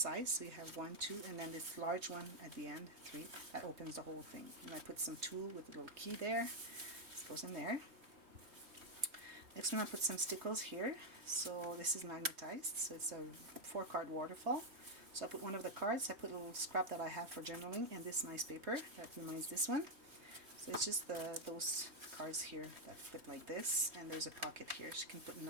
So you have 1, 2, and then this large one at the end, 3, that opens the whole thing. And I put some tulle with a little key there. This goes in there. Next one I put some stickles here. So this is magnetized, so it's a 4-card waterfall. So I put one of the cards, I put a little scrap that I have for journaling, and this nice paper that reminds this one. So it's just those cards here that fit like this, and there's a pocket here. She can put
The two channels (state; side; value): late; left; 3.2 ms